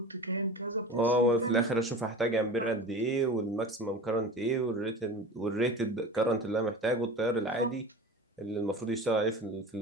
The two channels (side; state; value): both; normal; correlation 0.34